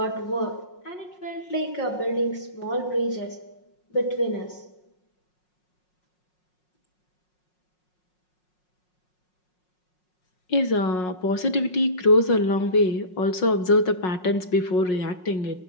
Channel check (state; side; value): late; right; 5.5 ms